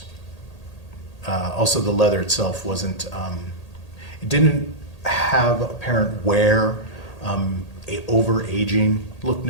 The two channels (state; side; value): late; right; 1.8 ms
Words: also the leather itself wasn't, it didn't have apparent wear, over-aging, looked